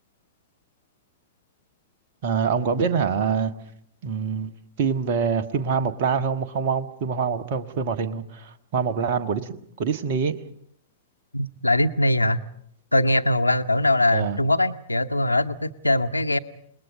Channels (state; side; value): inverted; both; correlation -0.61